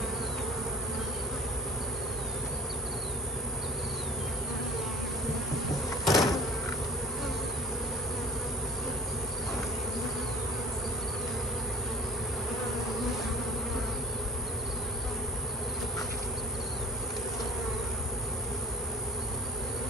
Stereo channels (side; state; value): both; normal; correlation 0.45